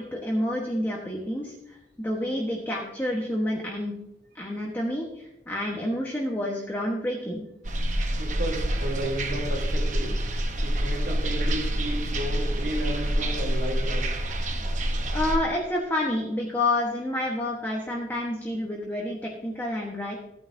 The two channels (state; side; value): normal; both; correlation 0.72